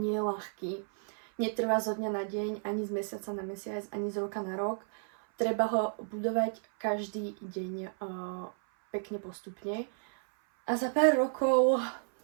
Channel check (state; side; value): silent; left; 56 dB below the other